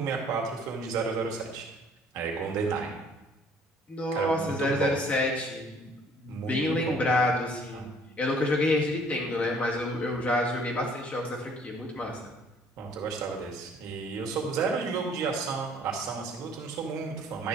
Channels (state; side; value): normal; both; correlation 0.58